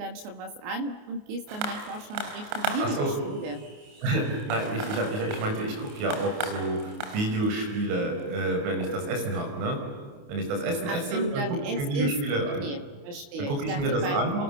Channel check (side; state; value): left; late; 28 ms